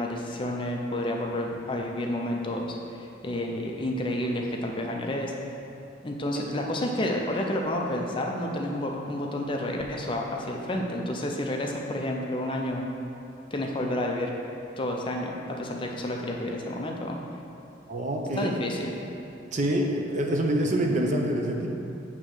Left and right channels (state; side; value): normal; both; correlation 0.52